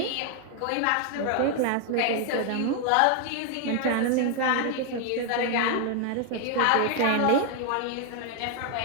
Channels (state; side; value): different; both; correlation 0.00